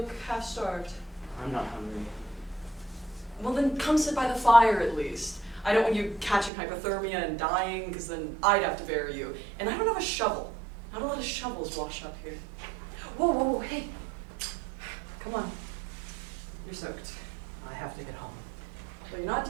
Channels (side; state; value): left; drops out; at 6.5 s